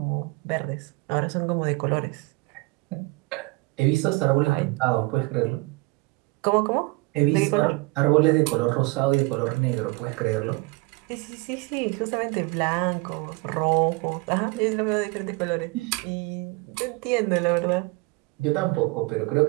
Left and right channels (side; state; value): left; quieter; 24.8 dB